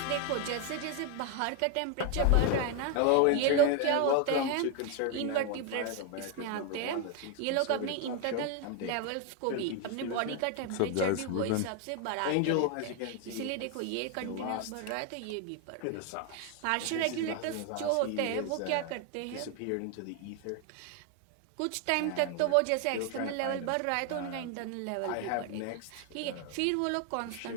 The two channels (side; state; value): both; different; correlation 0.01